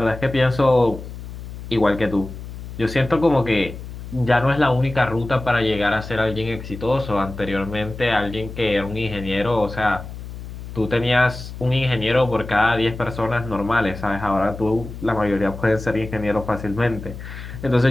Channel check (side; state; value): left; noise; hum, 11 dB below the sound